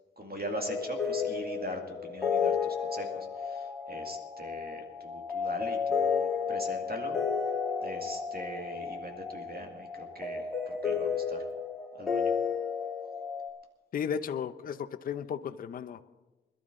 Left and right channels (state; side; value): quieter; right; 5.2 dB